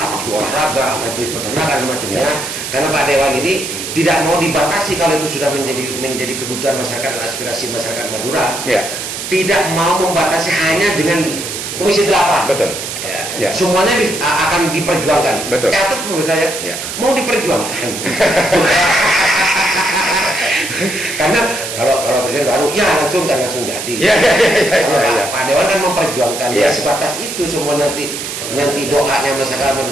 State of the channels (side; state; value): right; noise; hiss, 6 dB below the sound